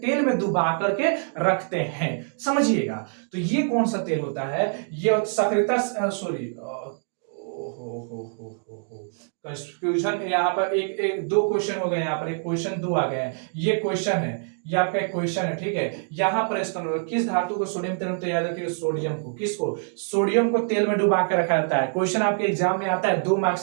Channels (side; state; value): left; silent; 62 dB below the other